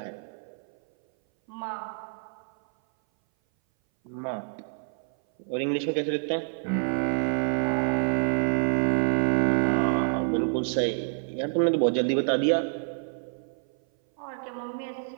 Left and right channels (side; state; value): left; silent; 58 dB below the other